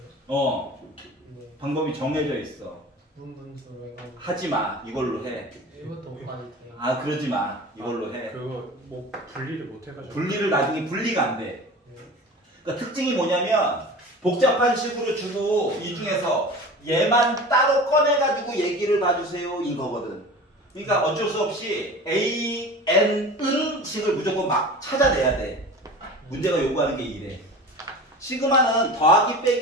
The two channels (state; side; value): normal; both; correlation 0.36